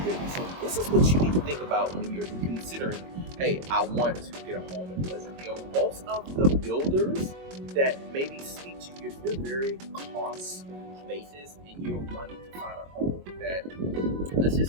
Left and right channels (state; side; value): late; left; 22 ms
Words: builders. So this is what you need to think about when you're considering, hey, I want to get a home in Pleasant Hill. Most of the builders that maybe speak to you, if you're very cost basis and you're wanting to find a home that, let's